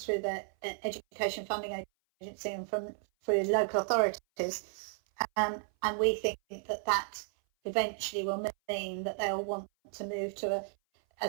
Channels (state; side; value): silent; left; 55 dB below the other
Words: through the Education Funding Agency and through local authorities, and we think that eventually will mean that they'll want to move to